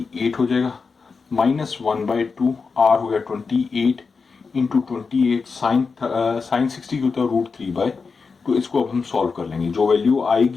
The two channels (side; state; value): right; quieter; 4.9 dB